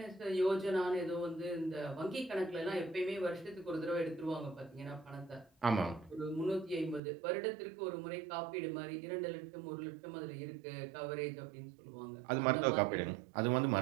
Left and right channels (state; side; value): drops out; left; at 7.0 s